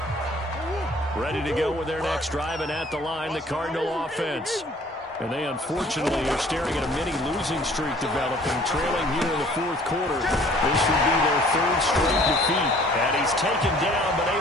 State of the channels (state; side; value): normal; both; correlation 0.54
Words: Ready to go with their next drive, and at the line, the Cardinal offense. And they unfortunately are staring at a mini losing streak developing, trailing here in the 4th quarter. This would be their 3rd straight defeat. And he's taken down, but